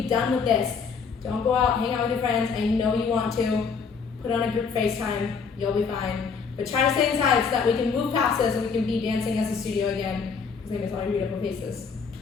done with this. Don't go out, hang out with your friends. I know you want to. Put on a group FaceTime. You'll be fine. But try to stay inside so that we can move past this and we can be dancing as a studio again. Because I miss all your beautiful faces.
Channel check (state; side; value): quieter; right; 5.6 dB